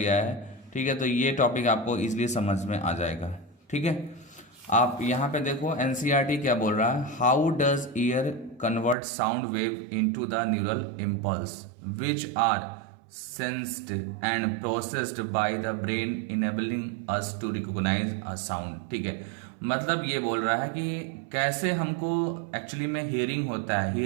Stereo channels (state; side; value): drops out; left; at 9.0 s